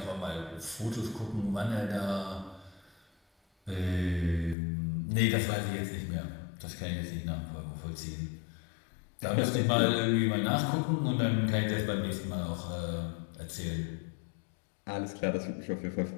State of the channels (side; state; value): right; drops out; at 4.5 s